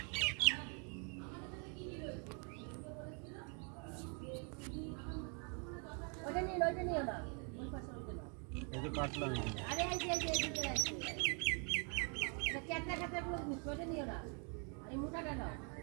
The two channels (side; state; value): left; quieter; 37.9 dB